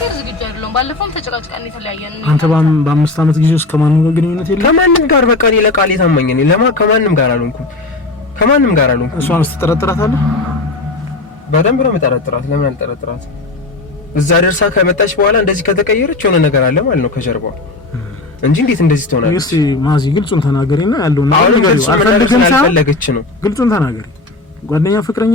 ዝግጁ አይደለሁም። ባለፈውም ተጨቃጭቀን የተለያየን ነው። አንተ በ5 ዓመት ጊዜ ውስጥ ከማንም ጋር ግንኙነት የለም? ከማንም ጋር በቃ እኔ ለቃል ታማኝ ነኝ። ከማንም ጋር አልሆንኩም። እሷን ስትጠረጥራታለህ? በደንብ ነው የምጠረጥራት። ለምን አልጠረጥራት? እዛ ደርሳ ከመጣች በኋላ እንደዚህ ከተቀየረች የሆነ ነገር አለ ማለት ነው ከጀርባው እንጂ እንዴት እንደዚህ ትሆናለች? እስቲ ማዚ ግልጹን ተናገሪና ያለውን ነገር አልፈለገች ነው። ግልጹን ተናገሪ። ጓደኛ ፍቅረኛ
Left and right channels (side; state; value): right; quieter; 3.2 dB